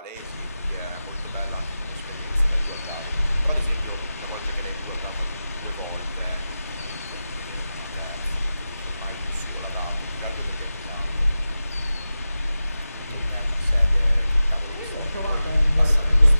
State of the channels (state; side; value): inverted; both; correlation -0.94